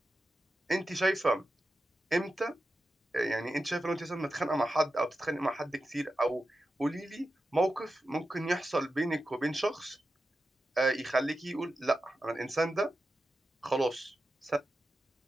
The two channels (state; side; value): normal; both; correlation 0.91